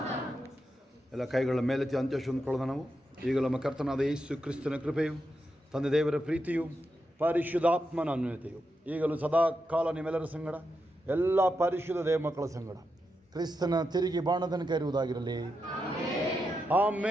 harm. ಎಲ್ಲ ಕೈಗಳ ಮೇಲೆತ್ತಿ ಅಂತ್ಯಶು ಅಂದ್ಕೊಳ್ಳೋಣ ನಾವು. ಈಗ ನಮ್ಮ ಕರ್ತನಾದ ಯೇಸು ಕ್ರಿಸ್ತನ ಕೃಪೆಯು, ತಂದೆ ದೇವರ ಪ್ರೀತಿಯು, ಪರಿಶುದ್ಧಾತ್ಮನ ಅನ್ಯೋನ್ಯತೆಯು ಈಗಲೂ ಸದಾ ಕಾಲ ನಿಮ್ಮೆಲ್ಲರ ಸಂಗಡ, ಎಲ್ಲ ಪರಿಶುದ್ಧ ದೇವ ಮಕ್ಕಳ ಸಂಗಡ ಕ್ರಿಸ್ತನ ತಿರುಗಿ ಬಾಣದನಕ ಇರುವುದಾಗಿರಲಿ.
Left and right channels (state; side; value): normal; both; correlation 0.86